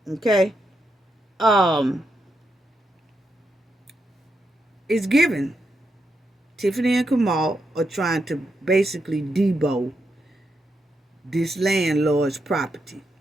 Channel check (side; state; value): both; normal; correlation 0.83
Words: Okay? It's given. Tiffany and Kamal are trying to basically debo this landlord's property.